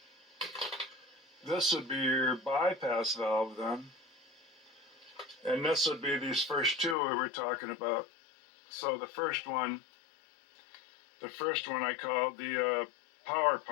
this would be your bypass valve then. And this would be these first 2 we were talking about. So the first one I called the power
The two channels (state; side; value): drops out; right; at 7.0 s